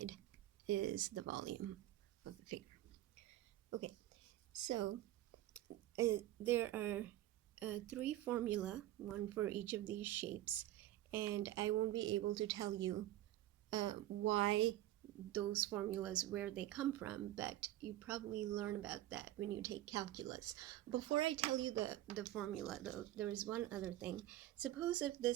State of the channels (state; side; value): quieter; left; 14.5 dB